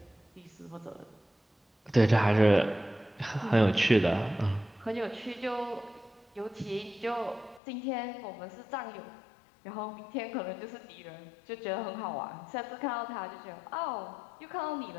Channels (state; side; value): drops out; right; at 7.6 s